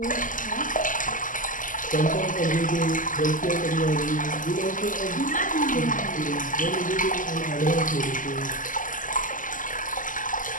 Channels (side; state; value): right; late; 0.38 ms